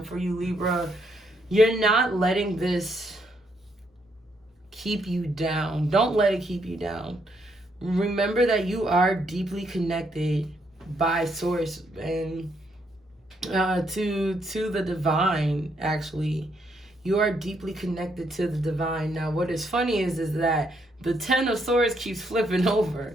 for you, Libra, you're not letting this keep you down. Don't let it keep you down. Remember that you are deeply connected by source and to the divine, actually. You are deeply connected to the divine. Now, what is funny is that the 10 of Swords keeps flipping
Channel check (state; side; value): normal; both; correlation 0.74